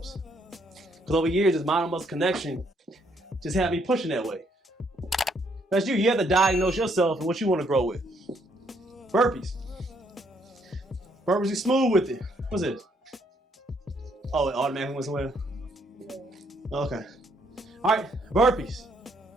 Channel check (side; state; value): both; normal; correlation 0.70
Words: Because over years, this mind and muscle connection just had me pushing that way. That's you. You have to diagnose yourself and what you want to grow with. Burpees. Burpees, you smooth with it. What's this? Oh, it automatically went somewhere? Okay. All right, burpees.